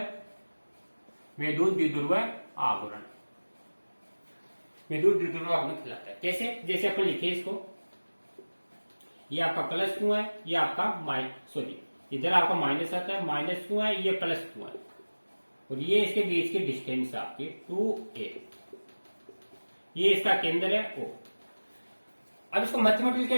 वैद्युत द्विध्रुव आवरण, वैद्युत द्विध्रुव आवरण कहलाता है। कैसे, जैसे अपन लिखे इसको, ये आपका प्लस क्यों है, ये आपका इधर आपका माइनस आता है, माइनस क्यों है, ये प्लस क्यों है, और ये इसके बीच की डिस्टेंस आपकी 2a, ये इसका केंद्र है O। अब इसको मैथमेटिकली क्या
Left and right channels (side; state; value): both; inverted; correlation -1.00